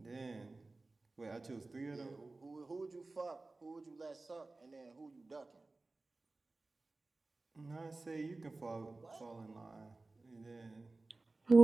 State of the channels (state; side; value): quieter; left; 3.3 dB